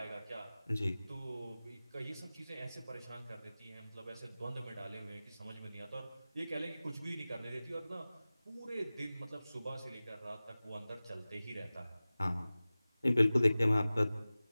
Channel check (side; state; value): both; inverted; correlation -0.97